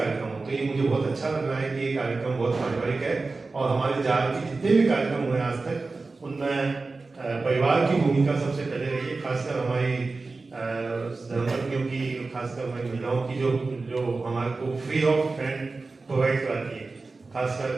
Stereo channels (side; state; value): left; quieter; 3.8 dB